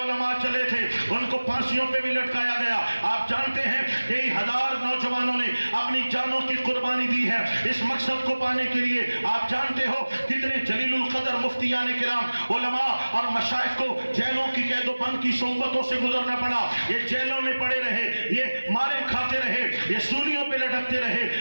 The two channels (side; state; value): both; inverted; correlation -1.00